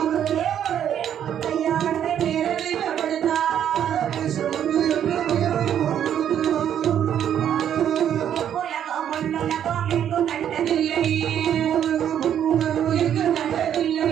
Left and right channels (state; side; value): quieter; left; 9.7 dB